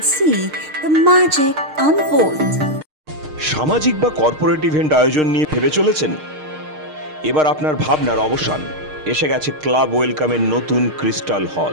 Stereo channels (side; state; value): left; late; 6.5 ms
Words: see the magic unfold. সামাজিক বা corporate event আয়োজন নিয়ে ভেবে চলেছেন? এবার আপনার ভাবনার অবসান। এসে গেছে ক্লাব ওয়েলকামের নতুন ক্রিস্টাল